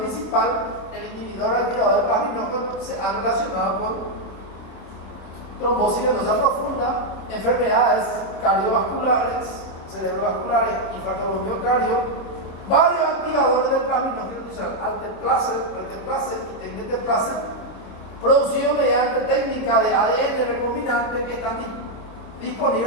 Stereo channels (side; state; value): right; late; 27 ms